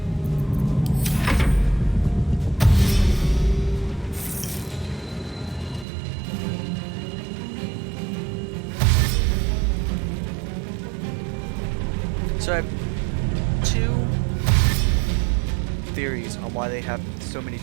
So I have two theories on why they have so many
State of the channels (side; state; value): left; drops out; at 5.9 s